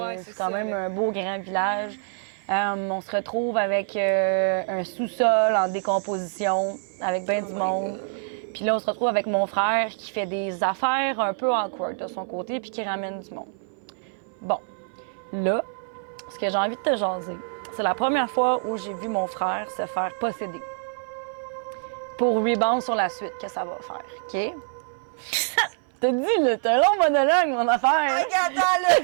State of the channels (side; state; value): left; silent; 57 dB below the other